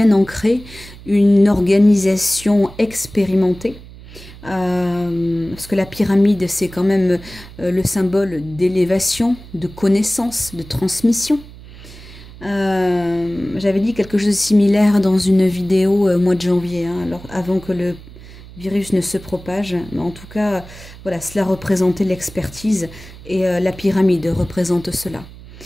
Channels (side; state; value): right; noise; hum, 18 dB below the sound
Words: ancrée, une organisation expérimentée. Parce que la pyramide, c'est quand même le symbole d'élévation, de connaissance, de transmission. J'avais dit quelque chose de similaire dans une vidéo au mois de janvier, hein, alors avant que le virus ne se propage. Mais en tout cas, voilà, cela représentait l'expertise et la pyramide représente cela.